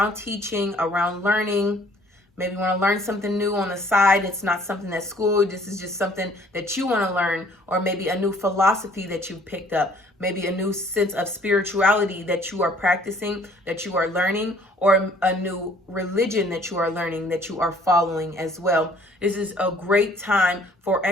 teaching, around learning. Maybe you want to learn something new on the side. It's not something that's school. This is just something that you want to learn, or maybe a new philosophy that you've picked up, maybe a new sense of spirituality that you are practicing, that you are learning, or a new religion that you are learning, that you are following as well. This is a great time for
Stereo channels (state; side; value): normal; both; correlation 0.58